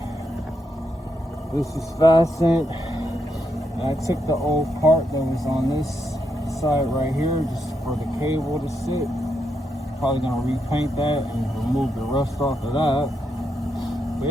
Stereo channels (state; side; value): normal; both; correlation 0.81